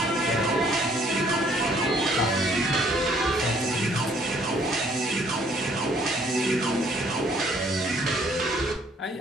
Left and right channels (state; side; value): normal; both; correlation 0.63